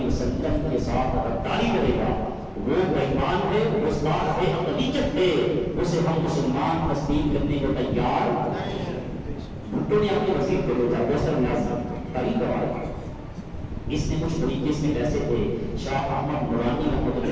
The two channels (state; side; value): identical; both; correlation 1.00